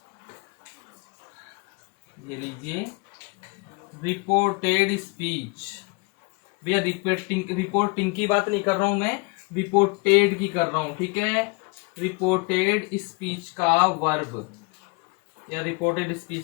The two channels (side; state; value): right; quieter; 28.8 dB